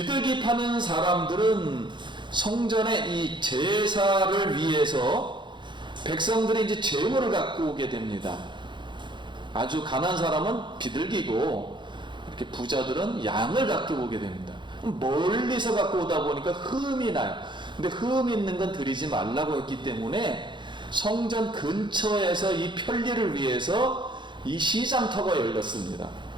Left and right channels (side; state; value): left; late; 0.23 ms